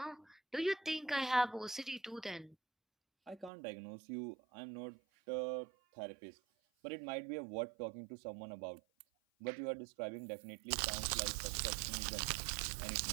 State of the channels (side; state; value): left; drops out; at 3.5 s